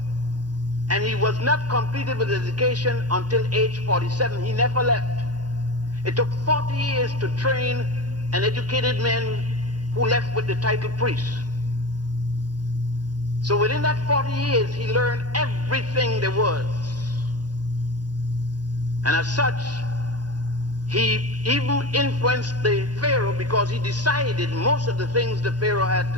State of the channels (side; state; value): left; late; 0.69 ms